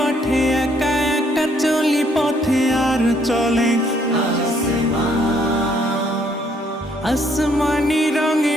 একা একা চলি পথে আর চলে আসমানি রঙে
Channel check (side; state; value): both; normal; correlation 0.67